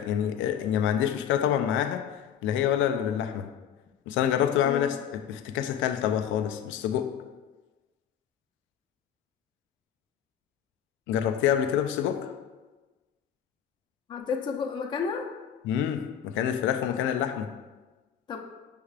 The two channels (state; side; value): quieter; right; 9.1 dB